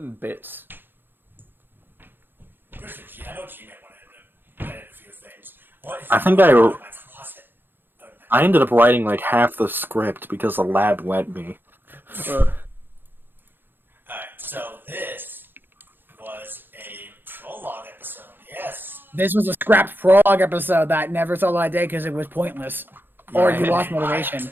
bits. I know G-Man wanted to edit a few things. I think I ended up writing like half the script because the lab let me. Alright, so this was a prologue episode, yes. This was a scrapped prologue episode that never saw the light of day because it was pointless. Or you lost motivation.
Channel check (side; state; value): left; late; 0.097 ms